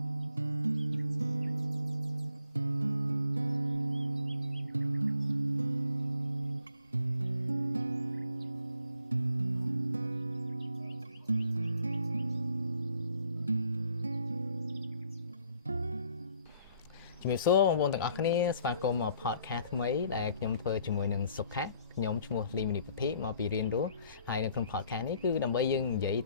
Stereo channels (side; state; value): both; inverted; correlation -0.63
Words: ជំរាបសួរបងប្អូនទាំងអស់គ្នាស្វាគមន៍មក podcast ថ្មីដែលខ្ញុំធ្វើជាមួយនឹងសុខៈខ្ញុំឈ្មោះលីមនីពុទ្ធិមកពីរៀនរស់ហើយនៅក្នុង podcast នេះគឺដើម្បីយើងនិយាយ